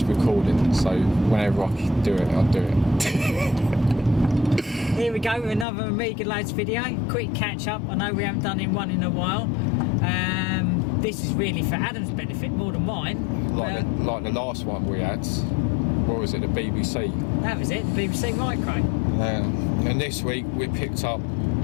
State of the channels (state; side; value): drops out; right; at 5.7 s